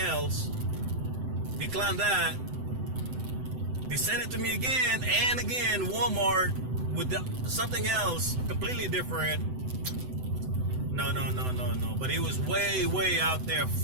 Declined that. They sent it to me again and again, Walmart with something else completely different. No. But it was way out there,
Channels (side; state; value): left; late; 7.9 ms